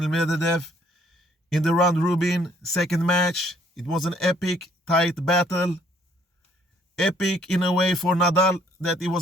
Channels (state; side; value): normal; both; correlation 0.64